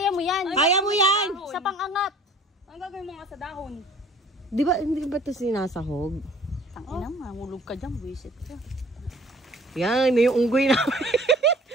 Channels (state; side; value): normal; both; correlation 0.51